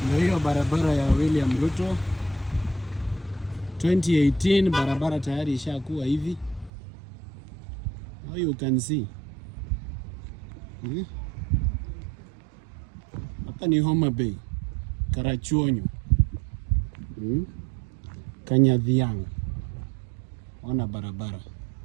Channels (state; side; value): drops out; left; at 6.7 s